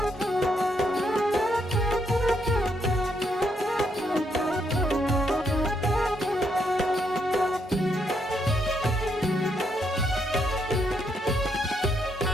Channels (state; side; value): normal; both; correlation 0.76